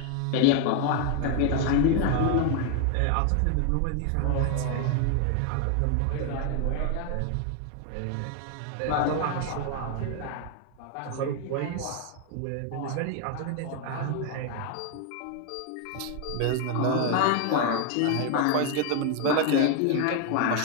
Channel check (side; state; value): both; different; correlation 0.01